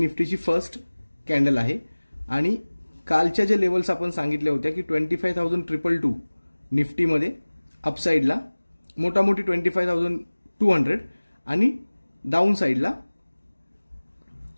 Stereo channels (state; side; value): inverted; both; correlation -1.00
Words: फर्स्ट कॅन्डल आहे। आणि कालच्या जे लेवल्स आपण सांगितल्या होत्या की 25,222 निफ्टीमध्ये अपसाइडला, मोठामोठी 25,200 आणि डाऊन साइडला